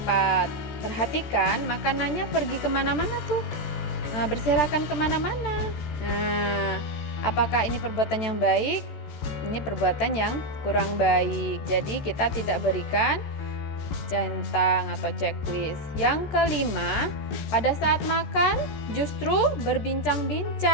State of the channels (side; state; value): right; late; 14 ms